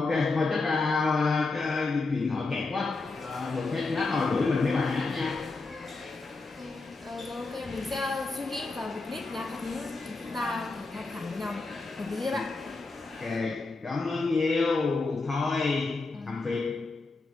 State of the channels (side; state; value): right; quieter; 3.6 dB